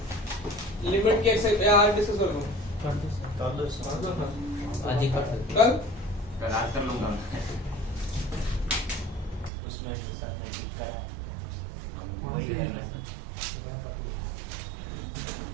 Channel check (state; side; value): drops out; left; at 9.5 s